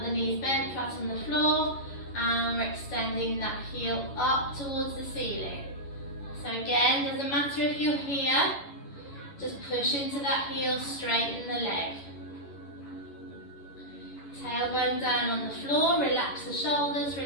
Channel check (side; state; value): right; late; 11 ms